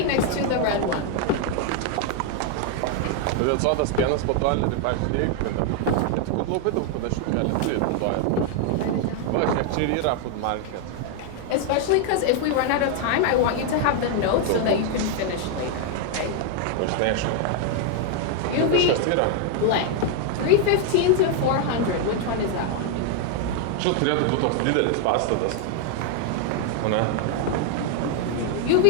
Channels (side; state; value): both; different; correlation 0.00